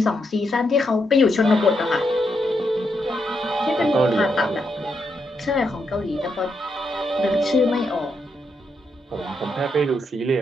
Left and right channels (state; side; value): normal; both; correlation 0.80